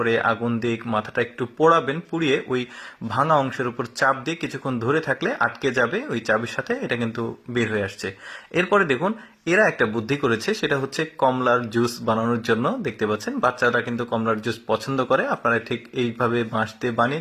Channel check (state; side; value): identical; both; correlation 1.00